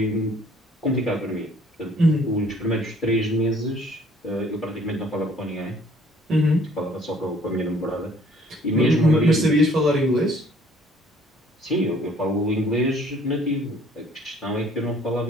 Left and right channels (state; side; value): normal; both; correlation 0.58